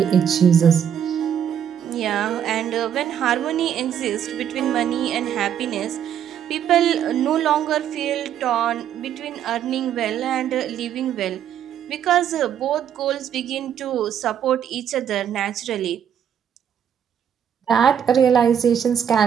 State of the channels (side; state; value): left; quieter; 9.1 dB